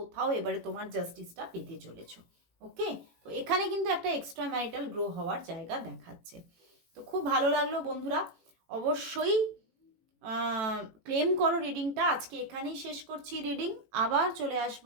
এবারে তোমার জাস্টিসটা পেতে চলেছো। ওকে, তো এখানে কিন্তু একটা এক্সট্রা ম্যারিটাল গ্রো হওয়ার জায়গা দেখাচ্ছে। তো খুব ভালো লাগলো বন্ধুরা, অবশ্যই ক্লেম করো রিডিংটা। আজকে এখানেই শেষ করছি রিডিং, আবার চলে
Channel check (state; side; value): late; left; 18 ms